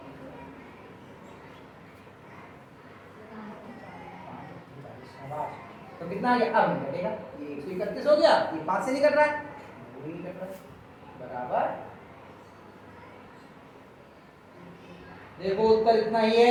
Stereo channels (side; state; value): both; identical; correlation 1.00